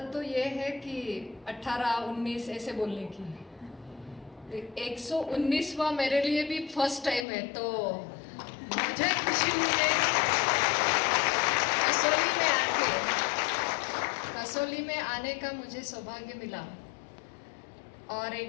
तो ये है कि 18 19 ऐसे बोलने की। 119वां मेरे लिए भी फर्स्ट टाइम है, तो मुझे खुशी हुई है। कसौली में आने का मुझे सौभाग्य मिला और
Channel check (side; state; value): right; drops out; at 7.2 s